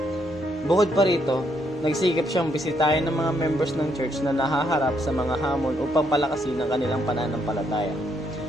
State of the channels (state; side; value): normal; both; correlation 0.74